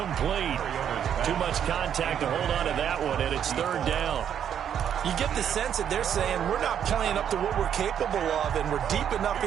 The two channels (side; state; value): left; quieter; 9.0 dB